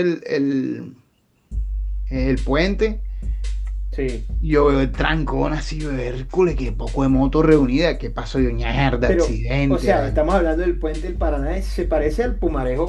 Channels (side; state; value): both; identical; correlation 1.00